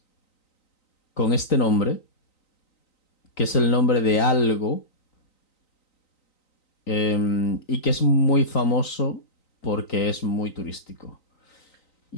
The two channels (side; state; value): right; late; 3.9 ms